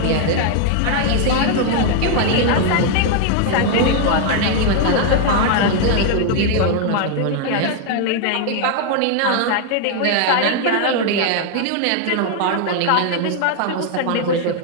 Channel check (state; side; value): different; both; correlation 0.00